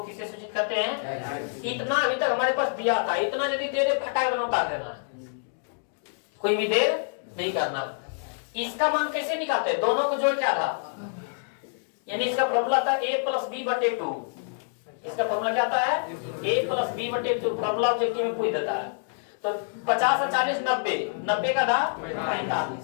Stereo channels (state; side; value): silent; right; digital silence